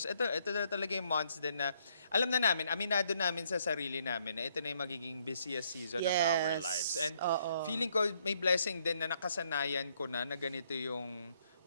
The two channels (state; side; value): inverted; both; correlation -0.70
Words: ito na talaga yung months din na alam na namin, aminado namin sa sarili namin na ito na yung magiging busiest season of our Yes. lives. And Oo. feeling ko may blessing din na nakasanayan ko na ganito yung